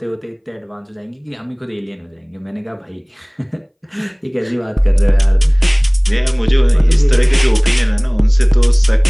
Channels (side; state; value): both; identical; correlation 1.00